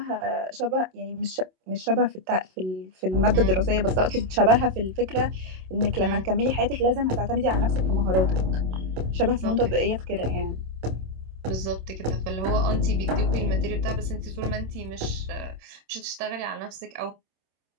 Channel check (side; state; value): left; late; 27 ms